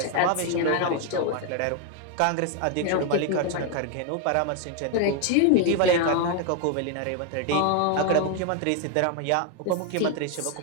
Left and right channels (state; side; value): different; both; correlation 0.01